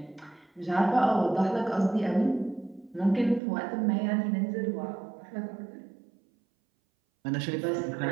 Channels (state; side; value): drops out; left; at 3.4 s